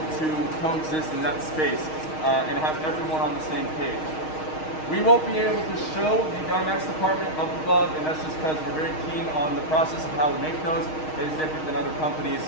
to coexist in that space and have everyone on the same page. We won't be able to show the Dymax department up above, and that's just because we're very keen on the process of how we make those. It is different than other companies,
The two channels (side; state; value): right; late; 6.4 ms